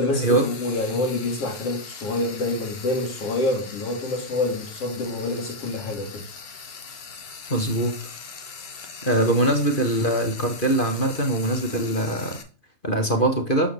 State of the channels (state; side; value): late; right; 2.5 ms